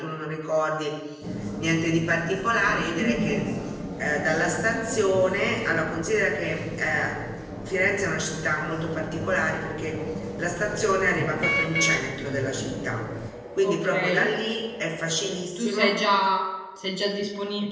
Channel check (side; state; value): both; identical; correlation 1.00